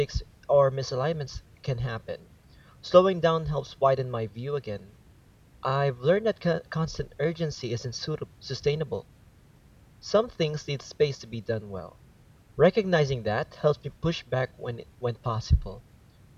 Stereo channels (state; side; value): identical; both; correlation 1.00